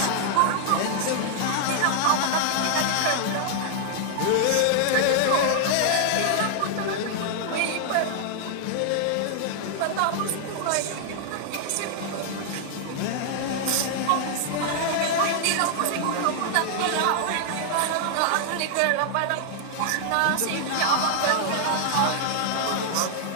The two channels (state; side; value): different; both; correlation 0.00